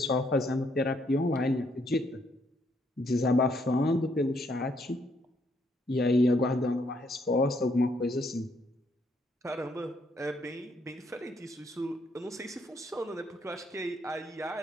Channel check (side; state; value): both; normal; correlation 0.71